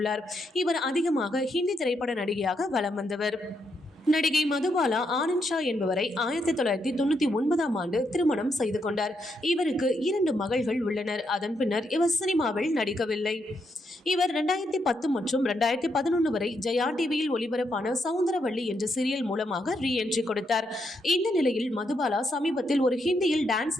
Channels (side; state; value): both; normal; correlation 0.79